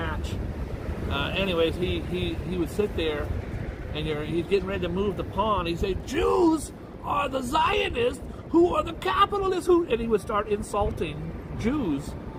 Anyways, he would sit there, and he's getting ready to move the pawn. He said, "Jews are the Zionists, who are the capitalists." And he would start insulting Jews.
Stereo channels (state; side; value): identical; both; correlation 1.00